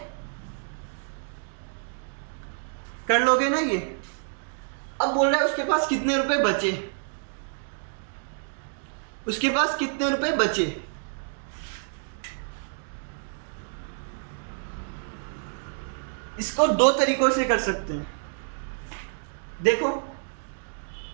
कर लोगे ना ये। अब बोल रहा है उसके पास कितने रुपए बचे, उसके पास कितने रुपए बचे। इसको दो तरीकों से कर सकते हैं। देखो,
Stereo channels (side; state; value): left; silent; digital silence